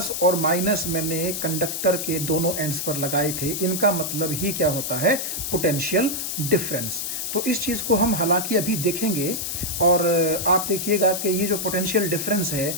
और माइनस मैंने कंडक्टर के दोनों एंड्स पर लगाए थे, इनका मतलब ही क्या होता है, पोटेंशियल डिफरेंस। तो इस चीज़ को हम हालांकि अभी देखेंगे और आप देखिएगा कि ये जो पोटेंशियल डिफरेंस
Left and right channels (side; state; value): left; noise; hiss, 3 dB below the sound